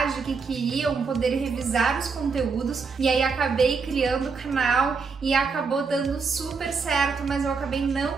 que queriam poder revisar os conteúdos e aí acabei criando o canal e acabou dando super certo, mas eu acabei não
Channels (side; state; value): left; quieter; 5.0 dB